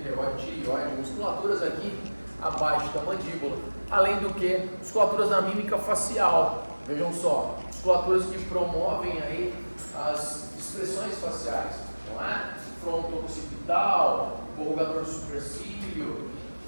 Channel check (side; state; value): both; inverted; correlation -1.00